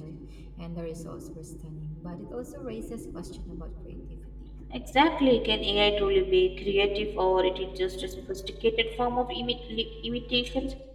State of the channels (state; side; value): identical; both; correlation 1.00